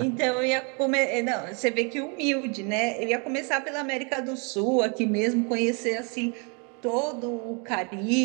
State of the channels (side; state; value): left; quieter; 34.8 dB